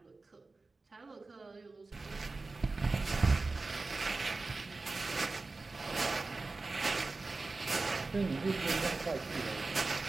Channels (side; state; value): left; quieter; 3.6 dB